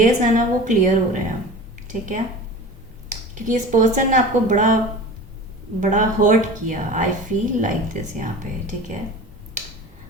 है ना वो क्लियर हो रहे हैं, ठीक है, क्योंकि इस पर्सन ने आपको बड़ा बड़ा हर्ट किया, आई फील लाइक दिस यहाँ पे, ठीक है।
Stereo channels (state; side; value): normal; both; correlation 0.36